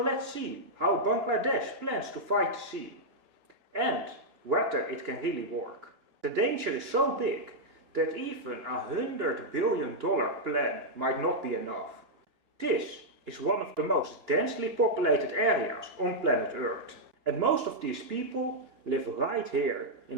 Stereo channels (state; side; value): late; left; 2.9 ms